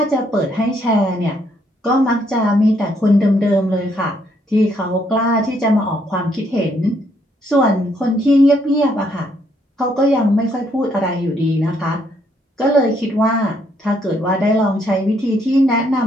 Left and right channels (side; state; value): both; normal; correlation 0.71